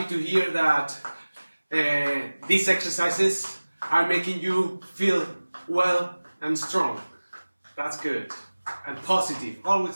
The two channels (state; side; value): inverted; both; correlation -1.00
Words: to hear that these exercises are making you feel well and strong. That's good. And positive, always